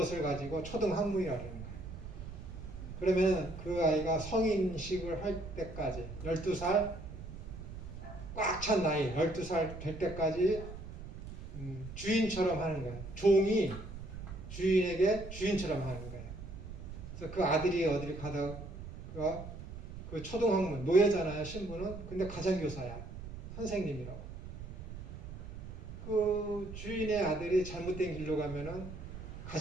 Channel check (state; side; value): noise; right; rumble, 11 dB below the sound